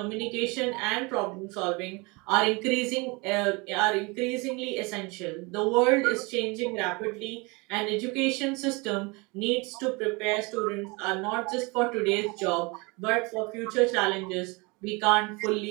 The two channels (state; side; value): quieter; left; 27.4 dB